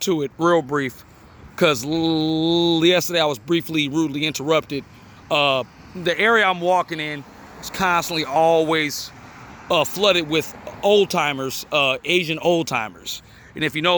it real brief, because yesterday I was briefly, rudely interrupted. The area I'm walking in is constantly always flooded with old timers, Asian old timers. And if you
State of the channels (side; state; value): both; identical; correlation 1.00